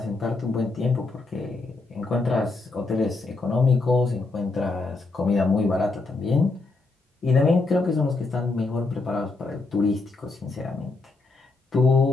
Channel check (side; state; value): right; quieter; 3.6 dB